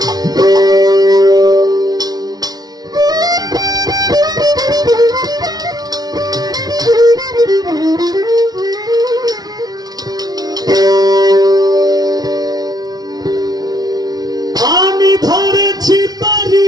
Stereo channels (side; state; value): left; late; 0.19 ms